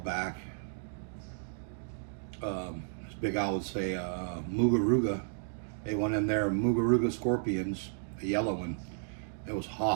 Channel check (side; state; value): left; silent; digital silence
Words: As Big Al would say, Mugaruga. They went in there, Mugaruga scorpions, a yellow one. It was